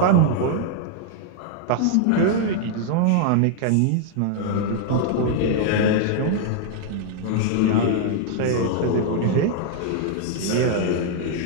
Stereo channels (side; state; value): both; different; correlation -0.01